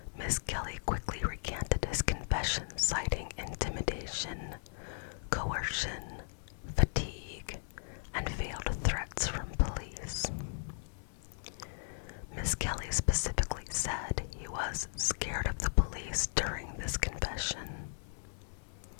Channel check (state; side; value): silent; right; 54 dB below the other